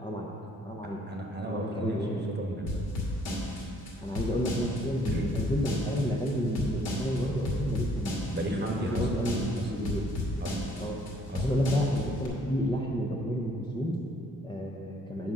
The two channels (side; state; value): both; normal; correlation 0.63